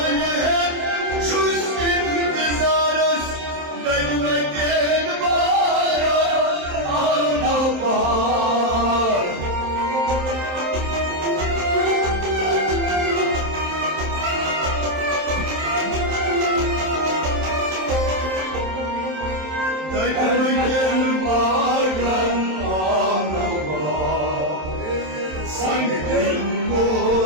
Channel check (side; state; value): left; late; 27 ms